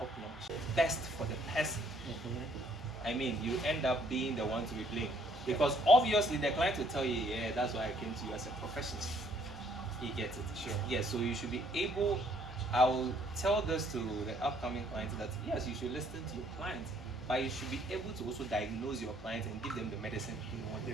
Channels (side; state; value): both; normal; correlation 0.64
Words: notch. Best for the person. I mean, you end up being the one to be blamed. Because obviously the client will tell you, yeah, that's why I came to you as a professional. You get it? Sure. Yeah, so you should be able, I will tell this to the upcoming clients that yes, you should listen to your clients, but you should be able to also diagnose your clients and give them the medicine they want. They